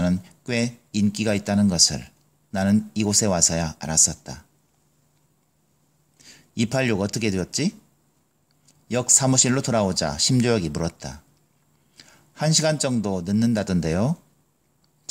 꽤 인기가 있다는 것을 나는 이곳에 와서야 알았었다. 286 어떻게 되었지? 역 사무실로 돌아오자 심조혁이 물었다. 1시간 정도 늦는다던데요?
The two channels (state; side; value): identical; both; correlation 1.00